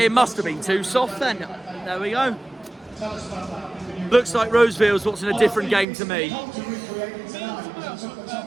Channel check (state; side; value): drops out; left; at 5.9 s